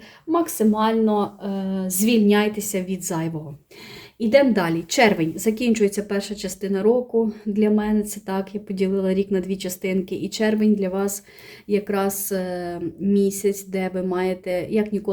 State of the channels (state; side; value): identical; both; correlation 1.00